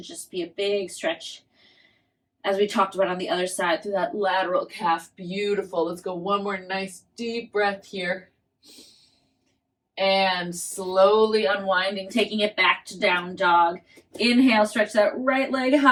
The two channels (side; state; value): both; identical; correlation 1.00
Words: just be a big stretch, as we talked about on the other side, through that lateral calf. Beautiful. Let's go 1 more nice deep breath here. And slowly unwinding, taking it back to down dog. Inhale, stretch that right leg